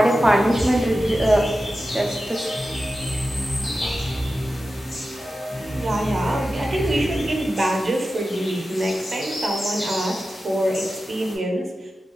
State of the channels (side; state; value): both; normal; correlation 0.93